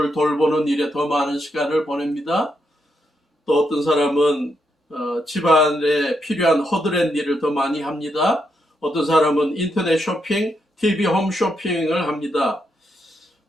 돌보는 일에 더 많은 시간을 보냅니다. 또 어떤 사람은 집안에 필요한 허드렛 일을 더 많이 합니다. 어떤 사람은 인터넷 쇼핑, TV 홈 쇼핑을 합니다.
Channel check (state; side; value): normal; both; correlation 0.80